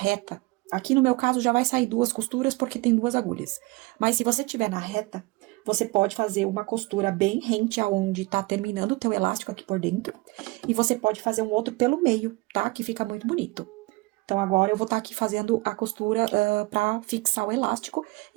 aqui no meu caso já vai sair 2 costuras porque tem 2 agulhas. Mas se você tiver na reta, você pode fazer uma costura bem rente aonde tá terminando o teu elástico aqui por dentro. E você pode fazer um outro pelo meio, tá? Que fica muito bonito. Então, agora eu vou estar aqui fazendo a costura pra fixar o elástico.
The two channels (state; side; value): quieter; left; 23.6 dB